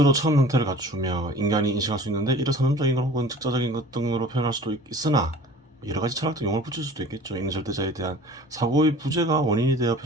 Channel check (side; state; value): both; normal; correlation 0.44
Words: 처음 형태를 갖추며 인간이 인식할 수 있는데 이를 선언적인 것 혹은 즉자적인 것 등으로 표현할 수도 있으나 여러 가지 철학적 용어를 붙일 수도 있겠죠. 있는 절대자에 대한 사고의 부재가 원인이 되어